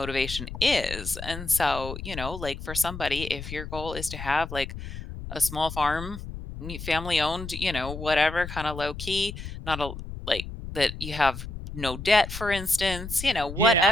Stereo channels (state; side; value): noise; left; rumble, 9 dB below the sound